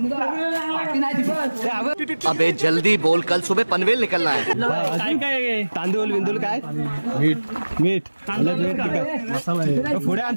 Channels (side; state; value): both; inverted; correlation -1.00